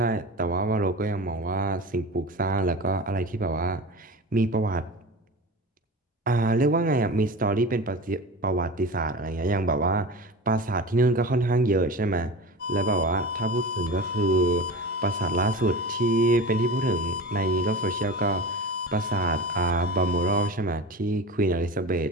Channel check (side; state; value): both; normal; correlation 0.31